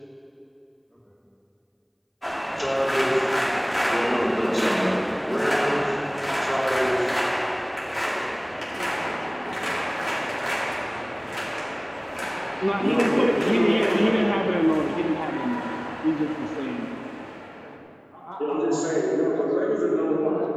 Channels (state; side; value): identical; both; correlation 1.00